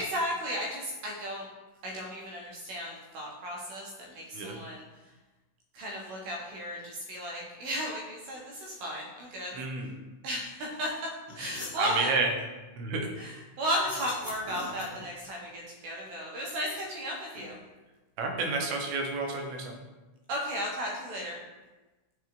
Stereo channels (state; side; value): late; left; 16 ms